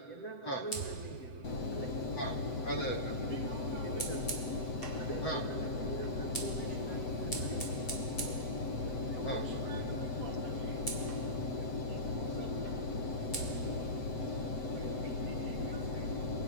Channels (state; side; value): late; right; 7.8 ms